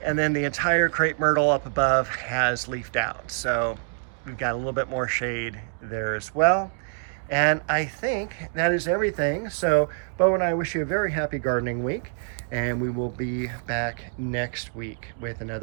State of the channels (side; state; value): left; silent; digital silence